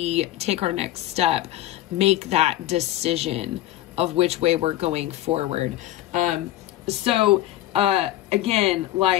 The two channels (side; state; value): right; quieter; 14.6 dB